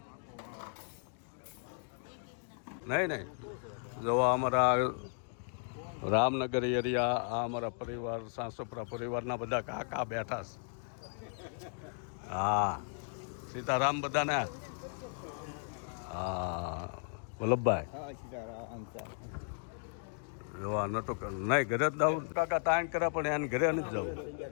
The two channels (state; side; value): silent; right; 54 dB below the other